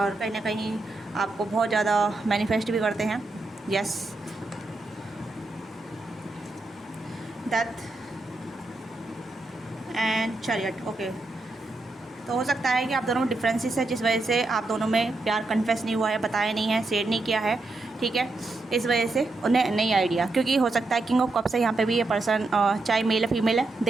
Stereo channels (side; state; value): left; quieter; 3.1 dB